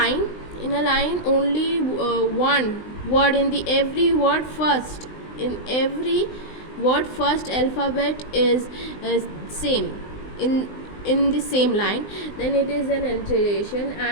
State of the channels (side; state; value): right; late; 20 ms